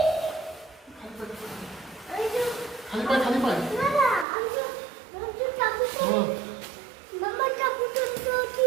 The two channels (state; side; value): drops out; left; at 4.2 s